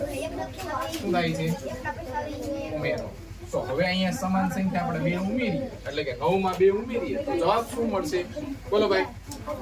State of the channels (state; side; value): identical; both; correlation 1.00